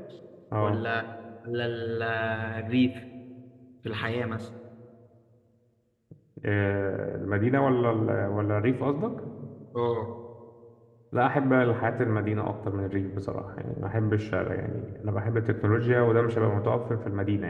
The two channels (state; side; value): identical; both; correlation 1.00